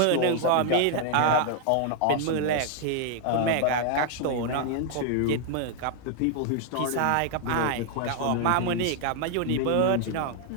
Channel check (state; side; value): different; both; correlation 0.00